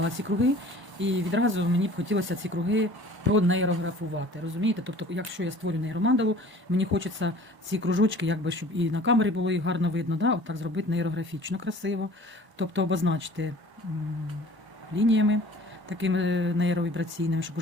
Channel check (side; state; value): left; late; 1.0 ms